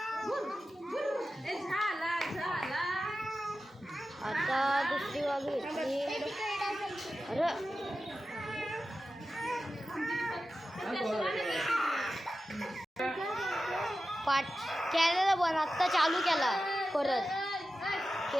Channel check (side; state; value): both; normal; correlation 0.93